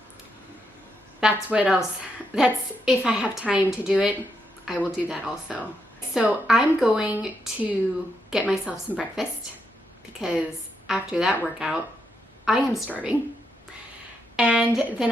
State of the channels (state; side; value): normal; both; correlation 0.80